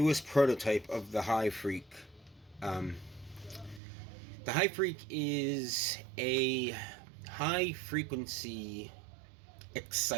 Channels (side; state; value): left; drops out; at 3.8 s